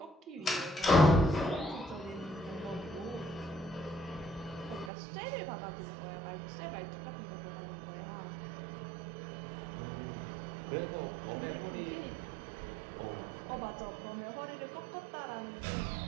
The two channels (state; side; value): drops out; left; at 4.9 s